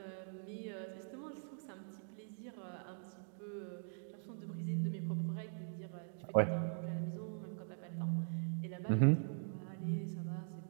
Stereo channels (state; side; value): silent; left; digital silence